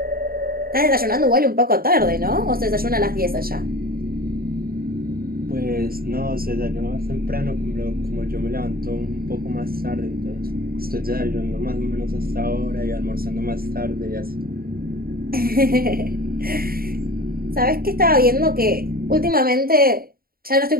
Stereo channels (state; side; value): late; left; 0.43 ms